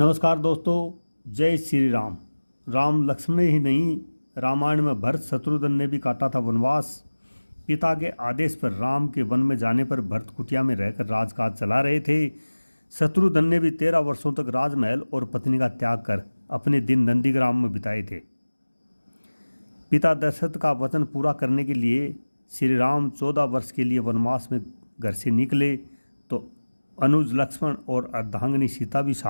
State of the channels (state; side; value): inverted; both; correlation -1.00